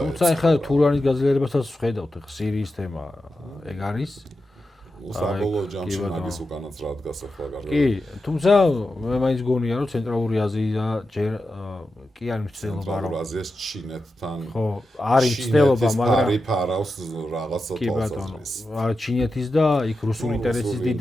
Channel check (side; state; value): both; normal; correlation 0.90